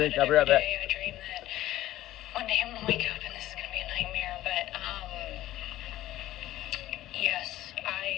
I'll be right back. I dream that one day I'm going to wake up and this is going to be a nightmare. But, yes,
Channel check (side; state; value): right; quieter; 14.7 dB